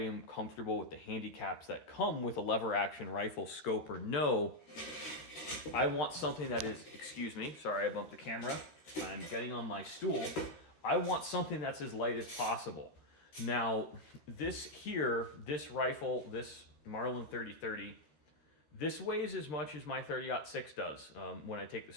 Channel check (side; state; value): right; late; 13 ms